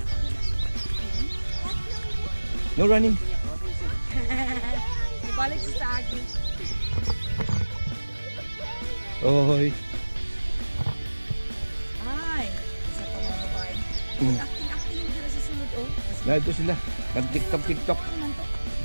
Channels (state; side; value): inverted; both; correlation -1.00